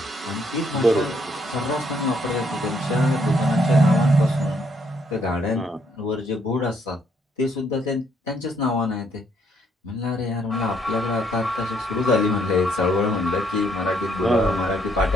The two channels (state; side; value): normal; both; correlation 0.70